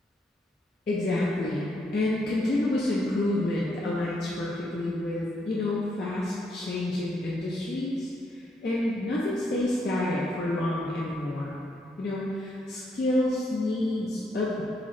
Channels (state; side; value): normal; both; correlation 0.76